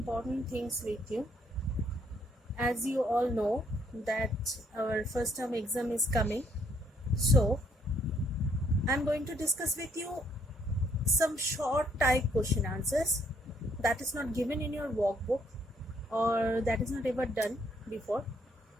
things with you. As you all know that our first term exam is coming, so I am going to discuss with you some short type question answers that is not given in your workbook or that is not ever done before.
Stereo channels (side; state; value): both; normal; correlation 0.69